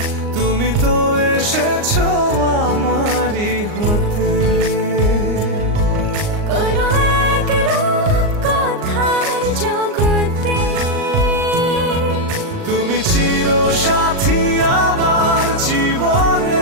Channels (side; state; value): left; late; 39 ms